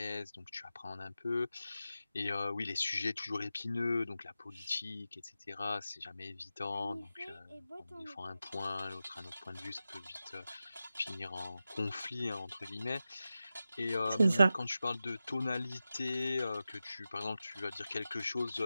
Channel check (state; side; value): inverted; both; correlation -0.92